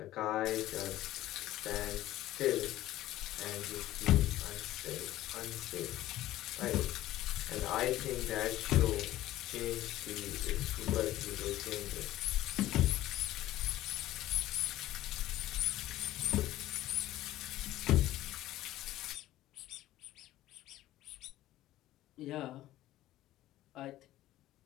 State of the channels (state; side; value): quieter; right; 14.9 dB